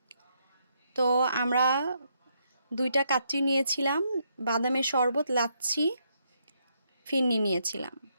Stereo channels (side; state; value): both; inverted; correlation -0.76